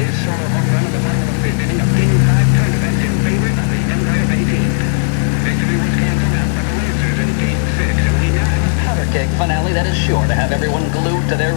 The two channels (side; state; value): right; silent; digital silence